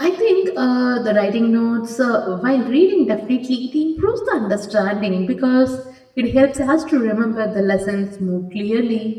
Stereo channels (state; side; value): identical; both; correlation 1.00